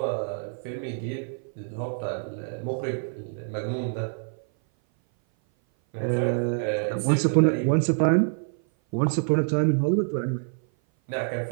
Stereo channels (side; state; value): left; silent; 57 dB below the other